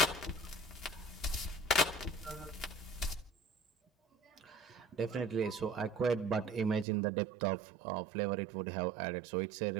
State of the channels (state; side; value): drops out; left; at 6.9 s